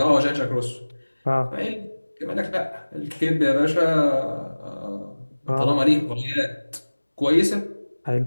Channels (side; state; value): both; inverted; correlation -1.00